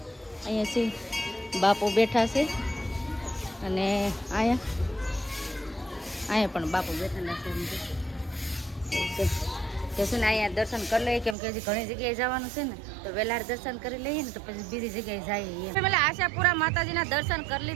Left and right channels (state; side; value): drops out; left; at 11.4 s